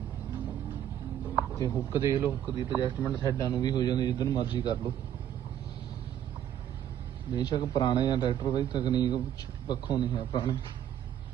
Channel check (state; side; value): quieter; left; 10.5 dB